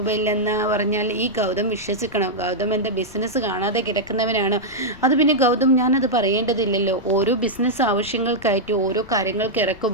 ഇല്ലെന്ന് പറഞ്ഞാൽ ഈ ഗൗതം വിശ്വസിക്കണം. ഗൗതം എൻ്റെ ബിസിനസ് കാണാതെ കിടക്കുന്നവനാണ്. അത് പിന്നെ ഗൗതം ഞാനത് പറയേണ്ടതില്ലല്ലോ. ഓരോ ബിസിനസ് ആവശ്യങ്ങൾക്കായിട്ട് ഓരോ കാര്യങ്ങൾക്ക്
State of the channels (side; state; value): left; noise; rumble, 21 dB below the sound